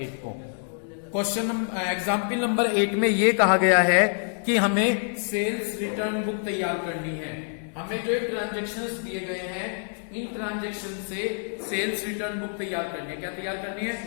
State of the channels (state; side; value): silent; right; 58 dB below the other